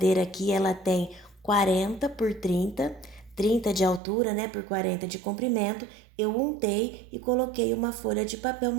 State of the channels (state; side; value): drops out; left; at 4.0 s